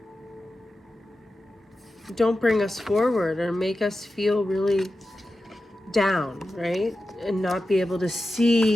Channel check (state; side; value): normal; both; correlation 0.92